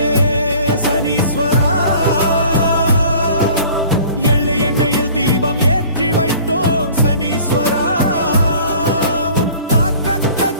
சனீஸ்வரா எள்ளு எண்ணெயில் தீபம் ஏற்றி வைத்தோம் சனீஸ்வரா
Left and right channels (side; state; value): both; inverted; correlation -0.48